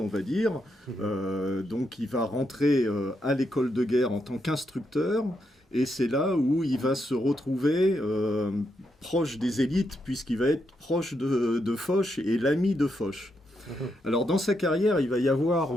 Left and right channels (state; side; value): normal; both; correlation 0.81